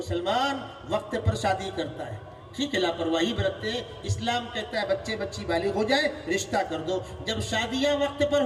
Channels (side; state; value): both; identical; correlation 1.00